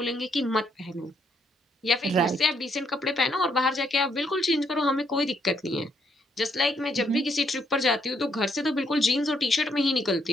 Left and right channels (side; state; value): both; normal; correlation 0.73